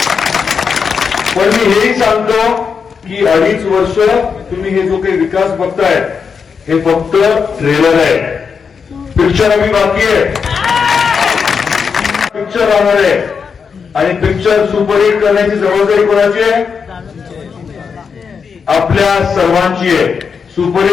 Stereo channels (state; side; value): quieter; right; 6.0 dB